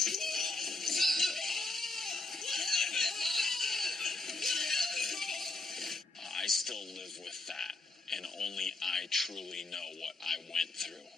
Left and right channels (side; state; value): right; quieter; 3.2 dB